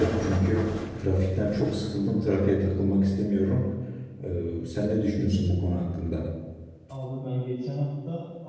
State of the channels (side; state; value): both; identical; correlation 1.00